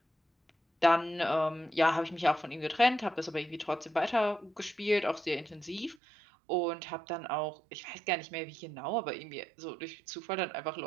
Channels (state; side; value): drops out; left; at 6.0 s